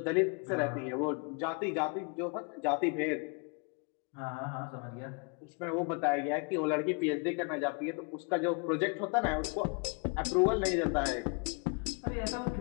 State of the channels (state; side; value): quieter; right; 35.3 dB